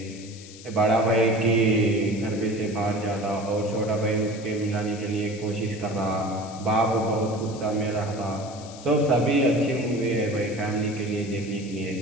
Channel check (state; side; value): noise; left; hiss, 18 dB below the sound